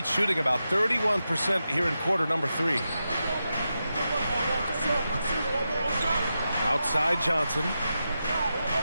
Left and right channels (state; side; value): inverted; both; correlation -0.89